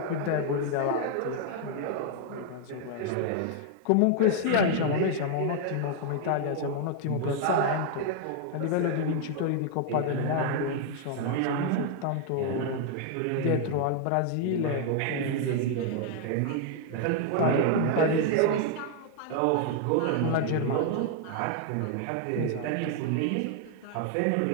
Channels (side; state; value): both; different; correlation 0.00